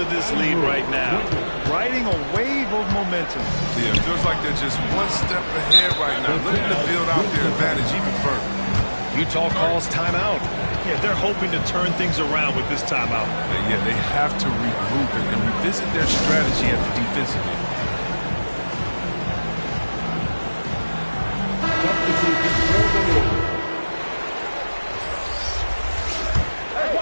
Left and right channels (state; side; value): inverted; both; correlation -1.00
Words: this lead right now. Riding a wave of momentum. Yeah, it feels like they're just one step ahead right now, looking to build out their advantage even further. Utah calls timeout. Yeah, they're hoping to turn things around with this timeout. Yeah, they have to regroup and revisit their strategy at the defensive end. Hey,